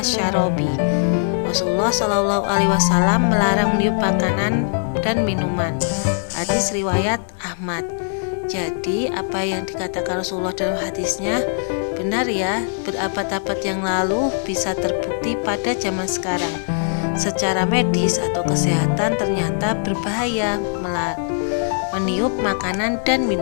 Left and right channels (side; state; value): right; silent; digital silence